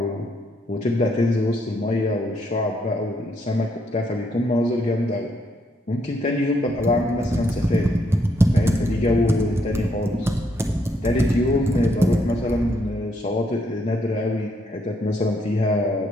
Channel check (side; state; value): both; normal; correlation 0.74